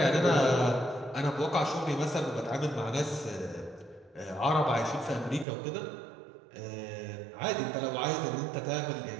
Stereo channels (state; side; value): drops out; left; at 5.5 s